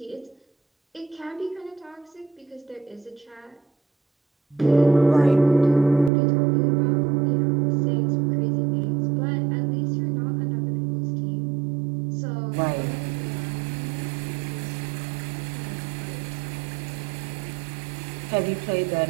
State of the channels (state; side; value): drops out; left; at 6.1 s